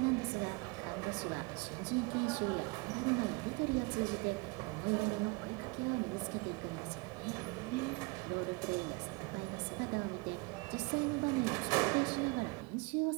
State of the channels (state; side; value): quieter; left; 27.4 dB